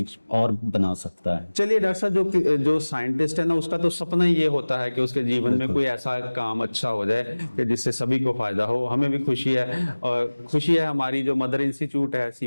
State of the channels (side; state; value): both; inverted; correlation -1.00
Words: और बना सकता है। चलिए डॉक्टर साहब, जो साइंटिस्ट है ना, उसका तो सपना ही ये होता है कि उसके जीवन में कोई ऐसा काम अच्छा हो जाए कि जिससे सभी को फायदा हो। हमें भी खुशी है और खुशी है हमारी जो मदर इंस्टीट्यूट है